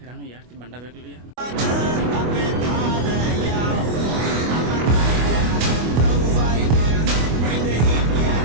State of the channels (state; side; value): late; left; 25 ms